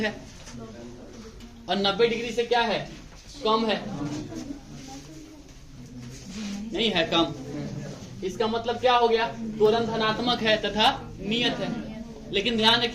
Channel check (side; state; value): both; identical; correlation 1.00